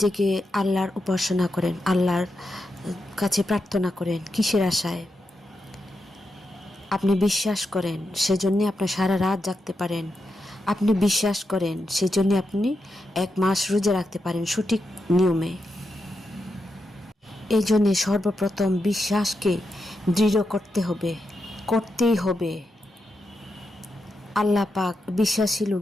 জেগে আল্লাহর উপাসনা করেন, আল্লাহর কাছে প্রার্থনা করেন। কিসের আশায়? আপনি বিশ্বাস করেন, সেজন্য আপনি সারা রাত জাগতে পারেন। আপনি বিশ্বাস করেন, সেজন্য আপনি 1 মাস রোজা রাখতে পারেন সঠিক নিয়মে। এই জন্যে সর্বপ্রথম বিশ্বাসকে দৃঢ় করতে হবে, করতেই হবে। আল্লাহ পাক বিশ্বাসী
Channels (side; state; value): both; normal; correlation 0.86